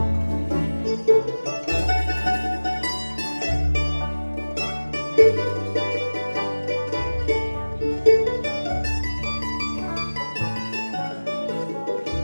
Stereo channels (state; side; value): inverted; both; correlation -1.00